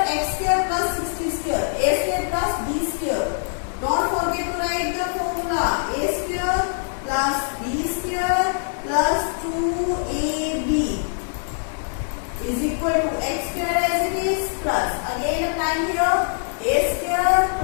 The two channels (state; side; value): silent; right; digital silence